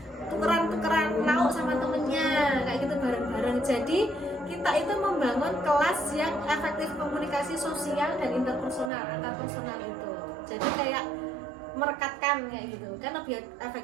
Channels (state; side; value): drops out; left; at 8.9 s